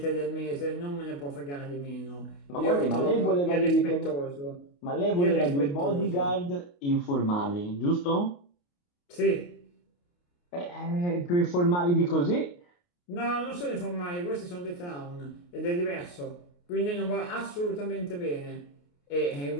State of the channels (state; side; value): late; right; 28 ms